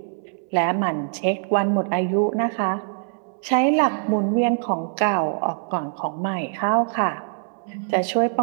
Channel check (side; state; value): left; silent; 63 dB below the other